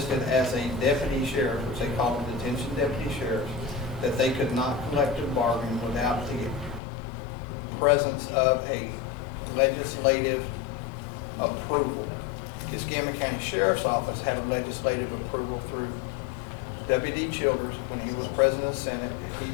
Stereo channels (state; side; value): drops out; right; at 6.8 s